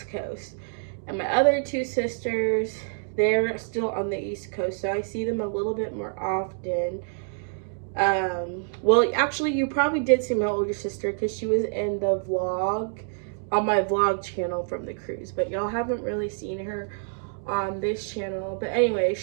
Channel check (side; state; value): left; silent; digital silence